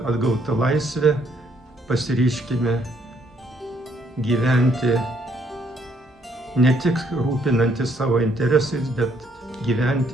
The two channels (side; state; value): both; normal; correlation 0.68